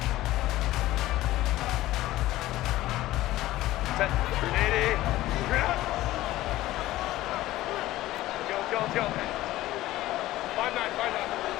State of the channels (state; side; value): quieter; right; 16.1 dB